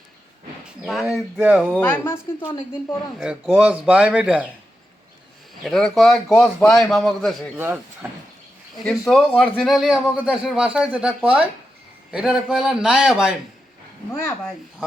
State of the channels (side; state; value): both; normal; correlation 0.88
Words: এই দেখো বাই মাছ কিন্তু অনেকদিন পর আনছে। গছ বাইম, এটা কয় গছ বাইম আমাকে দেশে, কিন্তু অরিজিনালি আমাকে দেশের ভাষায় যেটা কয় এটার কয়লা নায়া বাইম। নয়া ভাই